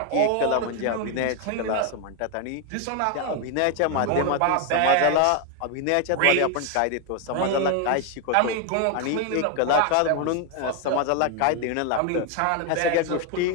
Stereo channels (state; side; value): different; both; correlation 0.01